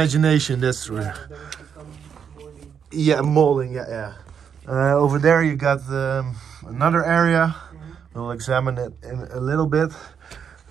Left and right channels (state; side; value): quieter; left; 7.4 dB